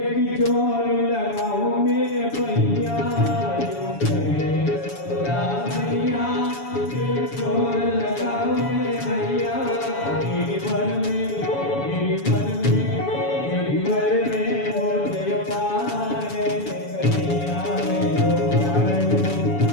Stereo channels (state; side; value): late; right; 7.1 ms